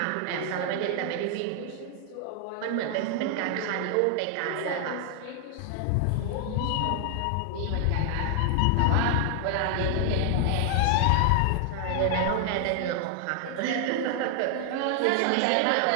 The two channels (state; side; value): different; both; correlation 0.00